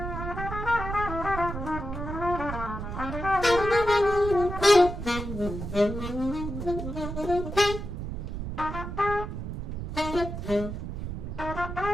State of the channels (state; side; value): noise; right; rumble, 6 dB below the sound